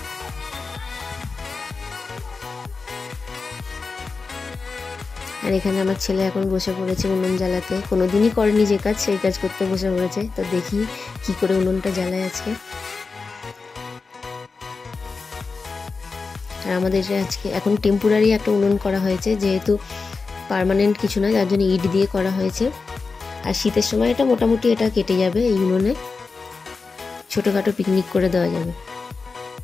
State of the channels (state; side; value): quieter; right; 4.4 dB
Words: আর এখানে আমার ছেলে এখন বসে পড়েছে উনুন জ্বালাতে। কোনোদিনই করেনি যে কাজ সেই কাজ করতে বসে পড়েছে। তো দেখি কি করে উনুনটা জ্বালায় আজকে। আর আমাদের আজকে এখন টেম্পোরারি একটা উনুন করা হয়েছে, যেহেতু পার্মানেন্ট কিছু না, যার জন্য ইট দিয়ে করা হয়েছে। আর শীতের সময় এটা মোটামুটি এটা কেটে যাবে, এই উনুনে ছোটোখাটো পিকনিক করে দেওয়া যাবে।